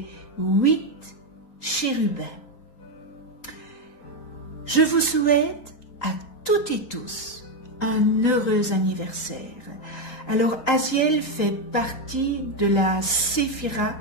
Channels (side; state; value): right; late; 3.9 ms